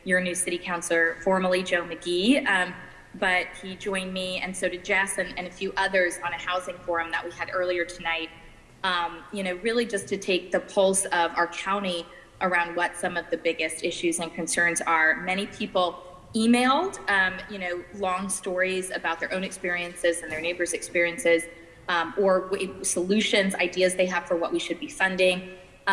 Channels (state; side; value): identical; both; correlation 1.00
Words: your new city councilor, formerly Joe McGee, but he joined me, and so did Jess and a few others on a housing forum that we had earlier tonight, really just to take the pulse of our county around what some of the biggest issues and concerns are. Many people emailed, long stories about their own experiences and their neighbors' experiences, or solutions, ideas they have for what we should be funding,